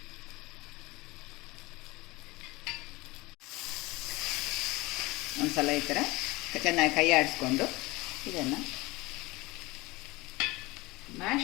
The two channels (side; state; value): right; quieter; 22.1 dB